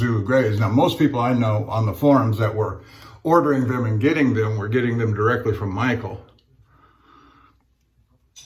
Greys. Now, most people I know on the forums that were ordering them and getting them were getting them directly from Michael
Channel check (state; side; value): identical; both; correlation 1.00